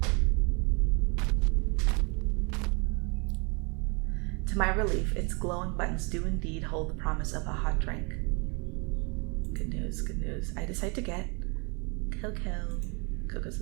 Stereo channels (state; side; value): quieter; left; 32.1 dB